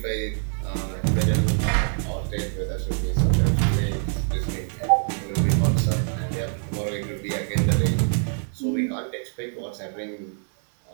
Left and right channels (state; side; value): silent; left; 62 dB below the other